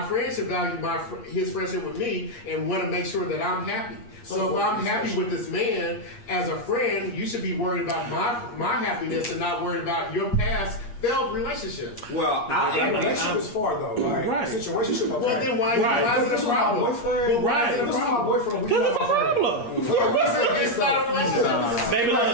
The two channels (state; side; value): late; right; 8.4 ms